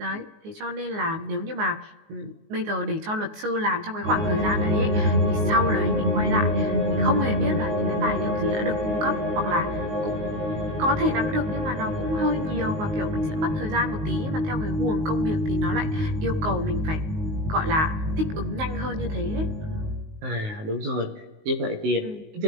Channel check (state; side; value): late; left; 19 ms